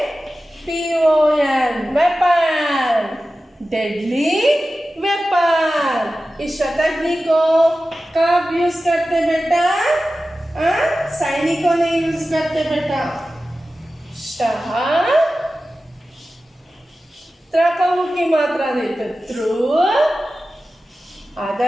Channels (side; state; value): both; normal; correlation 0.94